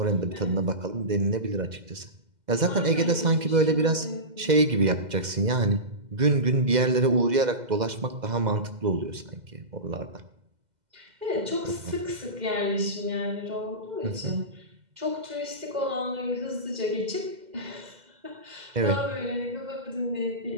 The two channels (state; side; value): late; left; 2.0 ms